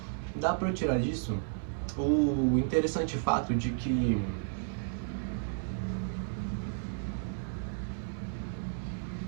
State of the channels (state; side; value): silent; left; 56 dB below the other